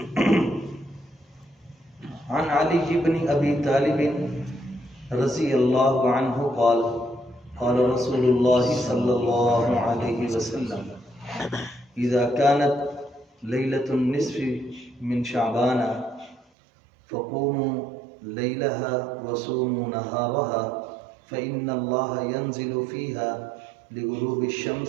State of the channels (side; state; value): left; drops out; at 16.4 s